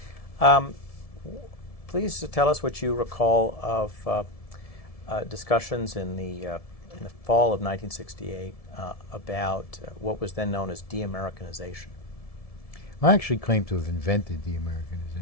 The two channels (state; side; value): late; right; 1.7 ms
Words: Please tell us what you recall of discussions in the fall of 1968 about what was then known as de-Americanization. I actually claim to have invented